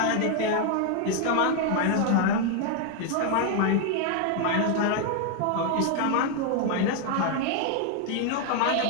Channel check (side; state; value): both; different; correlation 0.01